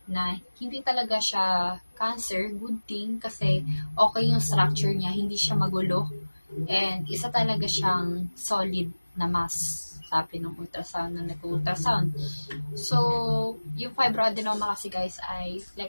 na hindi talaga siya cancer, good thing kasi okay yung structure niya, hindi siya magulo and isa talaga siyang solid na mass sabi ng ultrasound na nag-ultrasound. So, yung fibroadenoma kasi guys ay,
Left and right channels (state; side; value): inverted; both; correlation -1.00